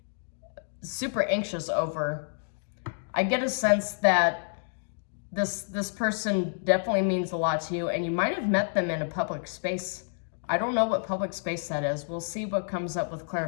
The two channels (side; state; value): right; silent; digital silence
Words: super anxious over, I get a sense that this person definitely means a lot to you, and you might have met them in a public space. I don't know what public space that is. We'll see what comes up with